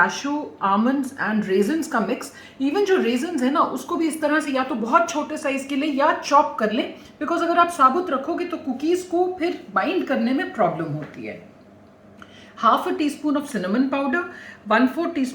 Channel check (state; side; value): identical; both; correlation 1.00